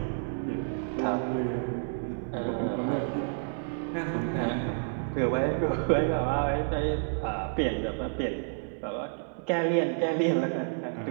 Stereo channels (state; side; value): silent; left; digital silence